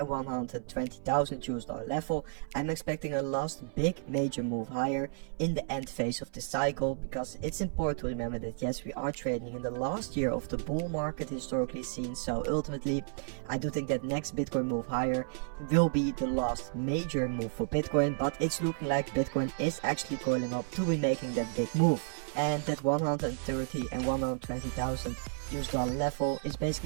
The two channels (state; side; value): silent; left; 56 dB below the other